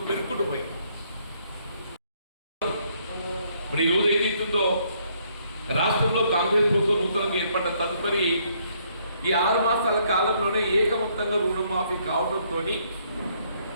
పెరుగుకుంటూ పోయి ఇప్పుడు ఈరోజు ఏదైతుందో రాష్ట్రంలో కాంగ్రెస్ ప్రభుత్వం నూతనంగా ఏర్పడ్డ తదుపరి ఈ 6 మాసాల కాలంలోనే ఏకమొత్తంగా రుణమాఫీ కావడంతో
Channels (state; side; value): inverted; both; correlation -0.69